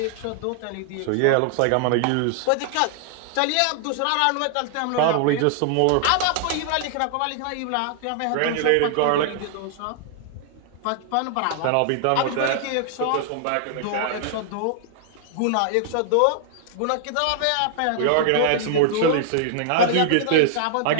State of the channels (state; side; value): different; both; correlation 0.00